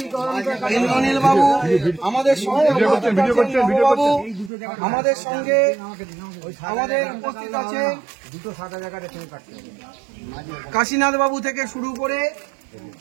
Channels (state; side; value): drops out; left; at 4.5 s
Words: ইন্দ্রনীল বাবু, আমাদের সঙ্গে আমাদের উপস্থিত আছে কাশীনাথ বাবু থেকে শুরু করে